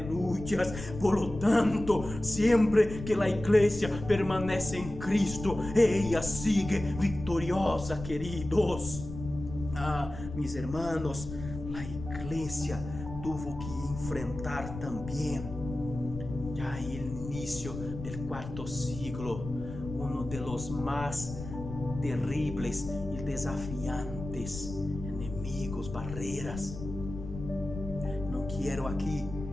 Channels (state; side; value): noise; left; rumble, 10 dB below the sound